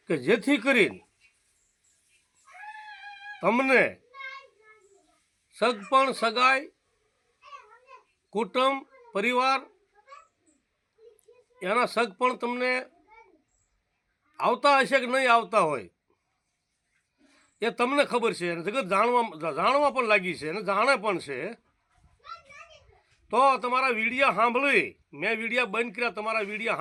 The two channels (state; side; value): identical; both; correlation 1.00